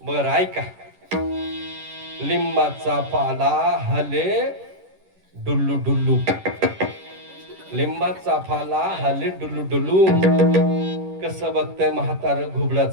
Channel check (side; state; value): left; late; 10 ms